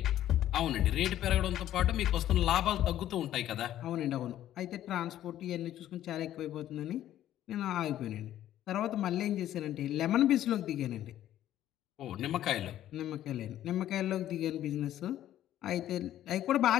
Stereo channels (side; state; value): right; quieter; 12.4 dB